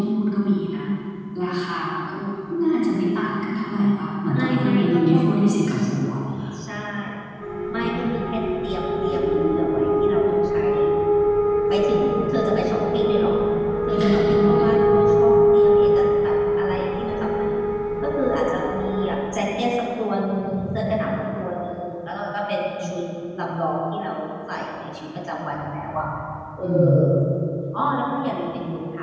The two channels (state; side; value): identical; both; correlation 1.00